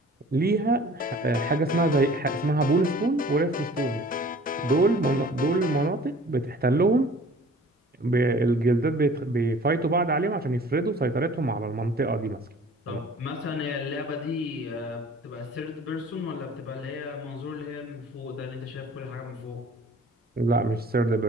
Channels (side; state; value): both; normal; correlation 0.49